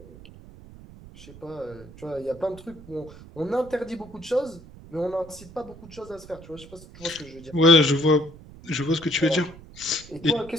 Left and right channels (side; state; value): right; noise; rumble, 19 dB below the sound